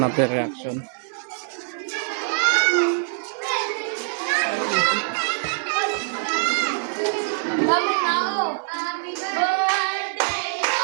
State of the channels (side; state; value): left; silent; digital silence